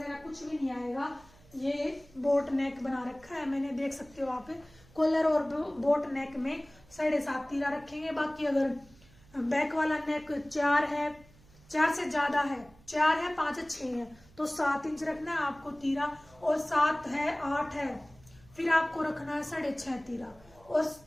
कुछ भी नहीं आएगा। ये बोट नेक बना रखा है मैंने, देख सकते हो आप। कॉलर और बोट नेक में 7.5 तीरा रखेंगे। बाकी अगर बैक वाला नेक 4 है, 4 से ज्यादा है, 4 है, 5 है, 6 है, तो 7 इंच रखना है आपको तीरा, और 7 है 8 है, फिर आपको रखना है 6.5 तीरा, और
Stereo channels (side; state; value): right; noise; hum, 26 dB below the sound